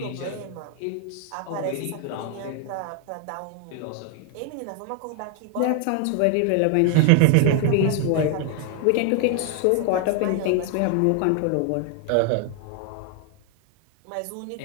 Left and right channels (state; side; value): different; both; correlation 0.01